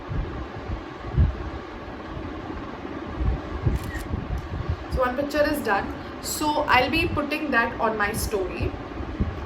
So one picture is done. So I'll be putting that on my story.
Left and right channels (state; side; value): identical; both; correlation 1.00